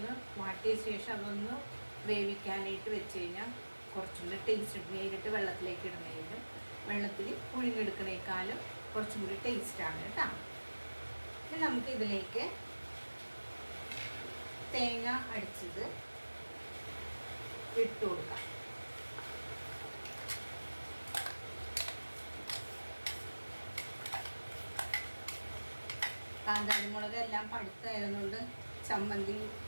വാട്ടിയ ശേഷം അതൊന്ന് വേവിക്കാനായിട്ട് വെച്ച് കഴിഞ്ഞാൽ കുറച്ചും കൂടി ടേസ്റ്റ്. നേരിട്ട് വെള്ളത്തിലേക്ക് ഇടുന്നതിനും വെള്ളത്തിൽ പുഴുങ്ങിയെടുക്കുന്നതിനേക്കാളും കുറച്ചും കൂടി ടേസ്റ്റാണ് കേട്ടോ. ഇനി നമുക്ക് ഇതിലേക്ക് തേങ്ങ അടിച്ചത് ഇട്ട് കൊടുക്കാം. കാന്താരിമുളക് എല്ലാം പഴുത്തായതുകൊണ്ട് ചമ്മന്തി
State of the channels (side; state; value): both; inverted; correlation -1.00